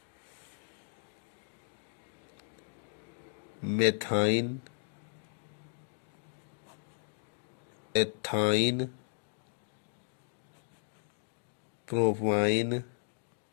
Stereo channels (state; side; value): silent; right; digital silence